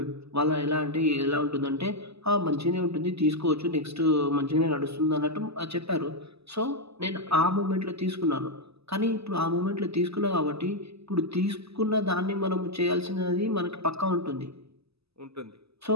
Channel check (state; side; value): late; left; 0.78 ms